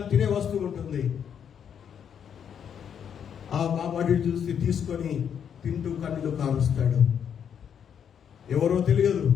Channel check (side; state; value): right; quieter; 8.1 dB